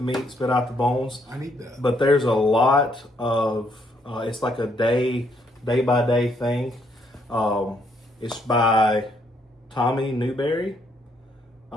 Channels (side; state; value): both; normal; correlation 0.71